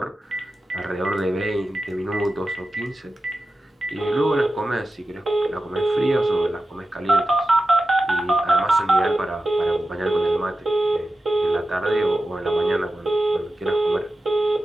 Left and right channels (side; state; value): both; normal; correlation 0.93